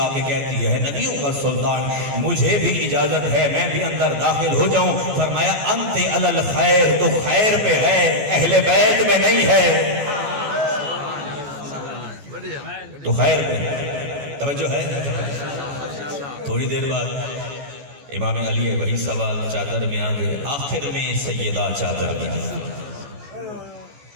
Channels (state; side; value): late; left; 14 ms